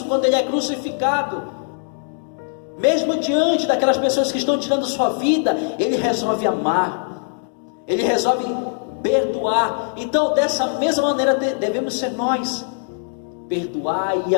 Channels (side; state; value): right; silent; digital silence